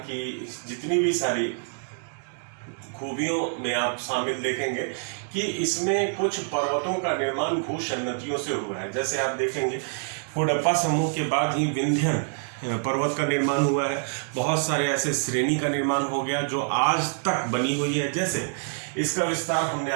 की जितनी भी सारी खूबियों में आप शामिल देखेंगे कि इसमें कुछ पर्वतों का निर्माण भूसन्नतियों से हुआ है। जैसे आप देखेंगे कुडप्पा समूह के बाद ही विंध्यन पर्वत का निर्माण हुआ है। बहुत सारे ऐसे श्रेणी का निर्माण हो गया जो आज तक बनी हुई है। जैसे इसका विस्तार हमने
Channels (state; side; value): silent; left; digital silence